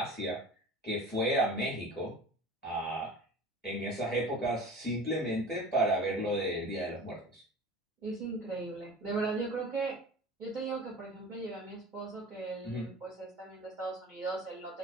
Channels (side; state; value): both; normal; correlation 0.38